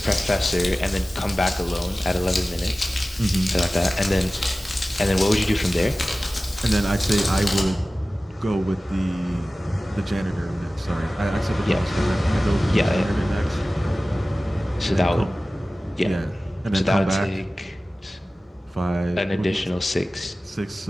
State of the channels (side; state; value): both; normal; correlation 0.96